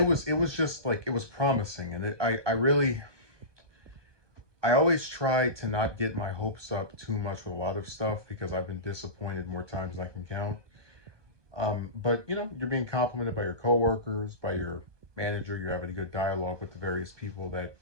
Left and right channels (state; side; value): late; left; 1.2 ms